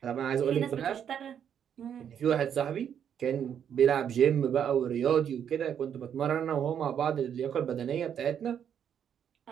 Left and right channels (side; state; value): left; quieter; 8.7 dB